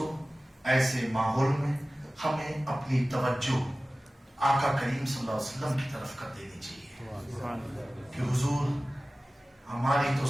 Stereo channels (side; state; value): both; normal; correlation 0.97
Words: ایسے ماحول میں ہمیں اپنی توجہ آقا کریم صلی اللہ علیہ وسلم کی طرف کر دینی چاہیے کہ حضور ہماری تو